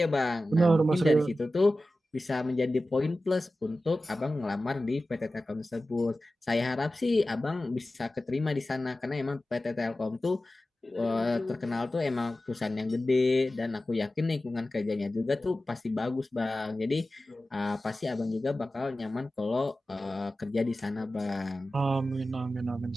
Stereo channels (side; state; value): both; normal; correlation 0.95